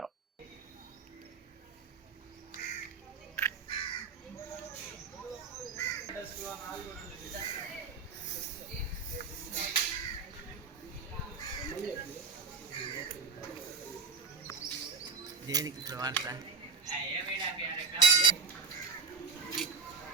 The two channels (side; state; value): left; quieter; 4.8 dB